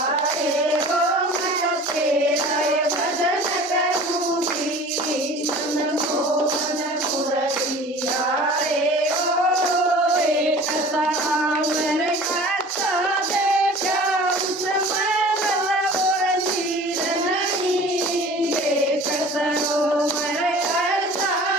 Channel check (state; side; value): normal; both; correlation 0.43